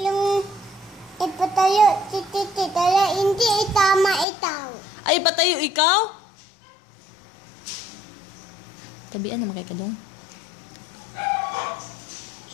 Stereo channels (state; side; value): drops out; right; at 4.2 s